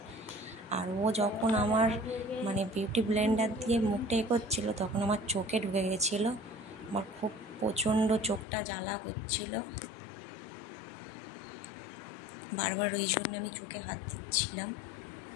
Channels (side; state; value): right; drops out; at 8.5 s